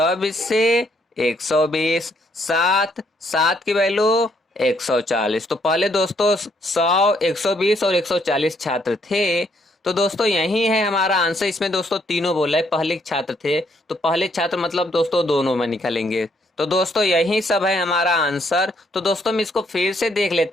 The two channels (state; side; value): normal; both; correlation 0.71